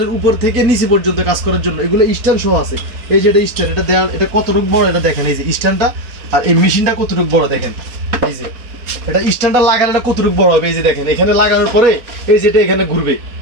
উপর থেকে নিচে পর্যন্ত কাজ করার জন্য। এগুলো স্ট্যান্ড সহ আছে। এই যে এটা স্ট্যান্ড, এটা দেয়াল, এটা কতটুকু বড় এটা দেখেন। এই যে স্ট্যান্ডটা আর এই মেশিনটা কতটুকু বড় দেখেন। এই যে এটা স্ট্যান্ডটা লাগানোটা কতটুকু বড় হবে, এই যে দেখেন এখানে লাগানোর পরে এই যেটা এখানে ঘুরবে।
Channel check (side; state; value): left; late; 4.0 ms